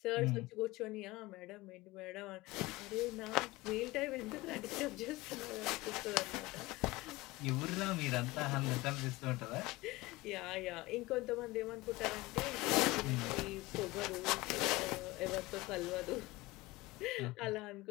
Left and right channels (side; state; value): right; quieter; 20.8 dB